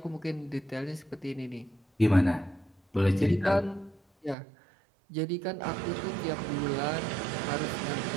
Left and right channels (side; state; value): left; drops out; at 4.4 s